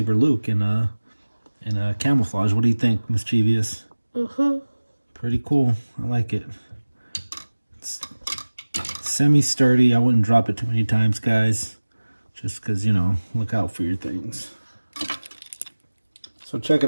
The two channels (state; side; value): inverted; both; correlation -1.00